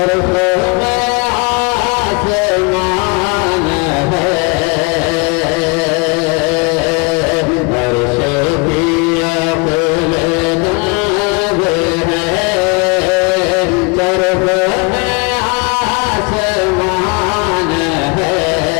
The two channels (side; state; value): right; quieter; 29.8 dB